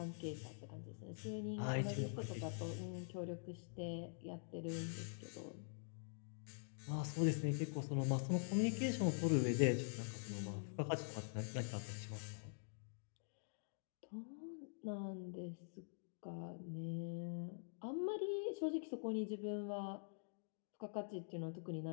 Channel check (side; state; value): right; silent; digital silence